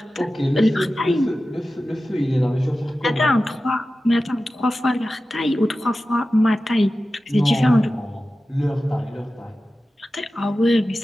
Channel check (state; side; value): normal; both; correlation 0.94